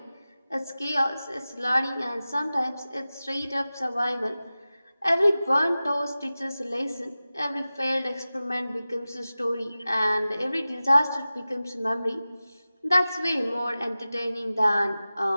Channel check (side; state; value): both; inverted; correlation -0.96